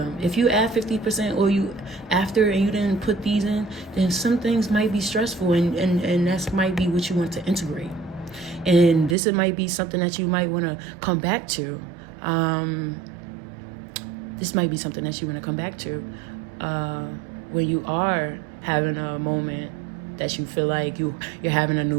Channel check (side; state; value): left; drops out; at 9.2 s